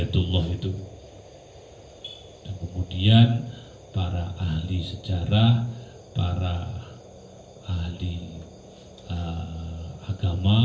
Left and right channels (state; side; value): identical; both; correlation 1.00